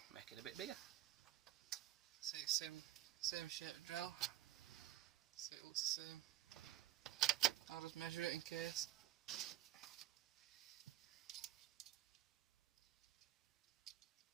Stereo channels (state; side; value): quieter; left; 13.9 dB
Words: Make it a bit bigger. See, same shape drill. So it looks the same. I'll just measure it in case.